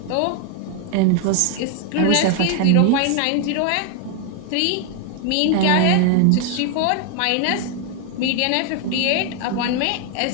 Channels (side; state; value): both; different; correlation 0.01